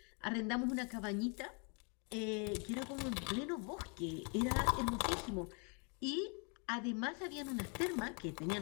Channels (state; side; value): quieter; right; 36.0 dB